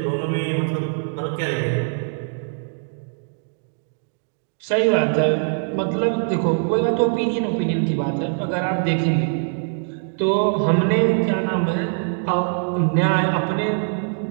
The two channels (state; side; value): silent; left; digital silence